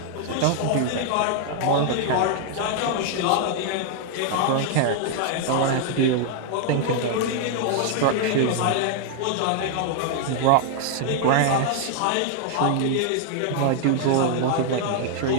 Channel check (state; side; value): different; both; correlation 0.00